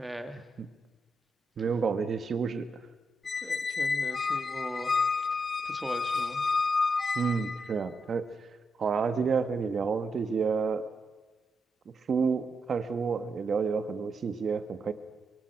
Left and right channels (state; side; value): normal; both; correlation 0.83